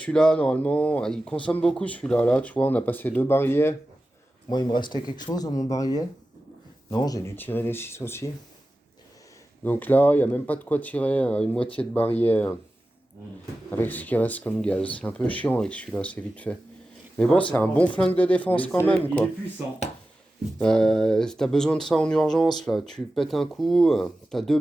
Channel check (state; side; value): normal; both; correlation 0.94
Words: normalement, il consomme beaucoup celui-là. Là, tu vois, on a passé 2 barillets. Moi, il me restait quelque chose dans mon barillet. Non, j'ai dû tirer les 6 aussi. Donc là, il n'y a même pas de quoi tirer une moitié de barillet avec ce qui reste comme gaz. C'est un peu chiant avec celui-là, c'est vite fait. Mais bon, c'est un bon flingue de défense Mais quand c'est- même, Il quoi. est puissant. Si t'as besoin de ça en urgence, là, tu pètes un coup, t'as 2